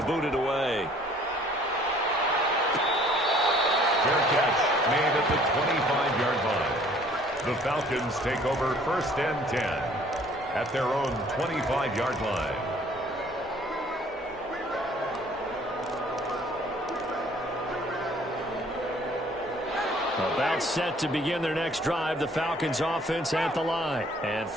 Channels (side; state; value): both; normal; correlation 0.57